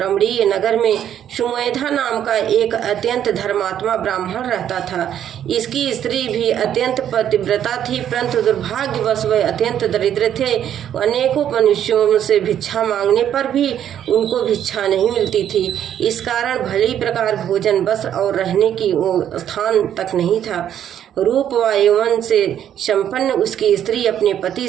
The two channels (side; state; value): left; quieter; 10.1 dB